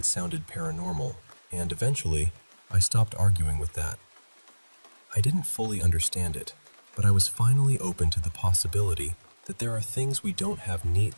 sounded paranormal, and eventually, I stopped arguing with that. I didn't fully understand it, but I was finally open to the possibility that there are things we don't have neat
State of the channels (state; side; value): inverted; both; correlation -1.00